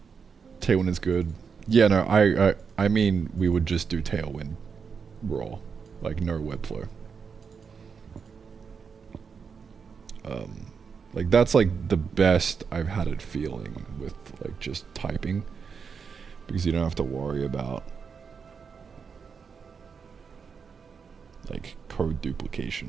Tailwind is good. Yeah, no, I mean we would just do Tailwind raw, like no Webflow. Like that's like the best I've had it feeling with like just typing, because you don't have to worry about like code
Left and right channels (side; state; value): left; quieter; 6.0 dB